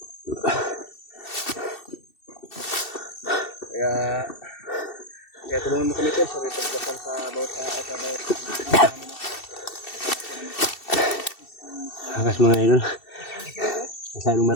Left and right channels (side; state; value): right; late; 2.7 ms